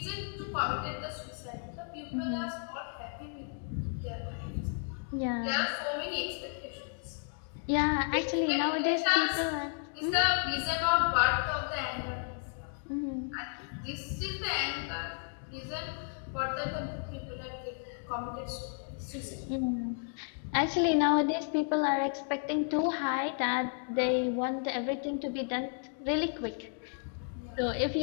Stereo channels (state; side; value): silent; right; 56 dB below the other